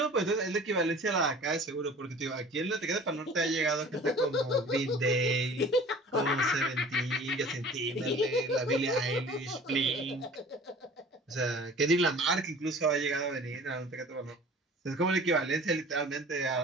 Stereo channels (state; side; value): normal; both; correlation 0.45